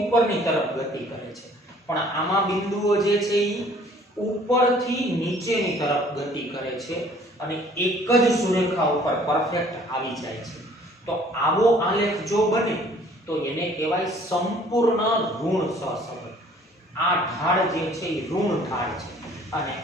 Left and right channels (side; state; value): both; normal; correlation 0.55